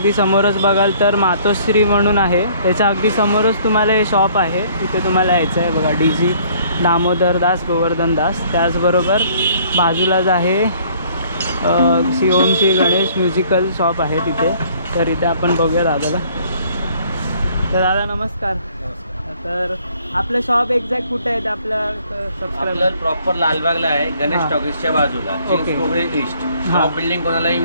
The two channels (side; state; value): both; inverted; correlation -0.59